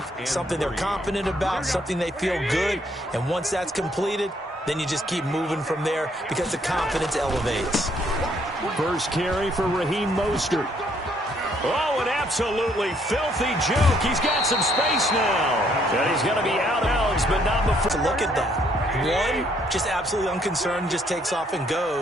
something they're confident about, something they feel good. And once that's completed, then you just keep moving from there because the confidence elevates. First carry for Raheem Mostert. Oh, an absolutely filthy juke. He's got some space now. And he's going to be out of bounds, but not before. Look at that. One, just absolutely unconcerned, just takes off and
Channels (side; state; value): both; normal; correlation 0.68